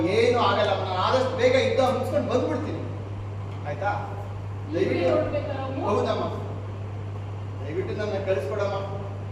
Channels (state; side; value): identical; both; correlation 1.00